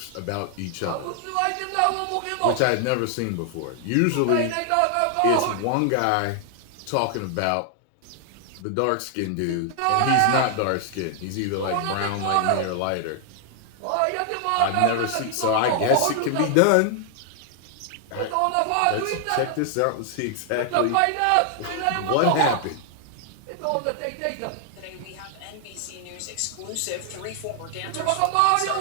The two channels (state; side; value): different; both; correlation 0.00